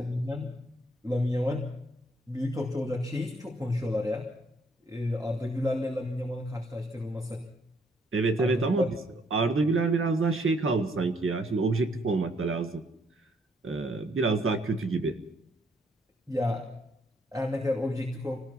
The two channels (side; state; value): both; normal; correlation 0.69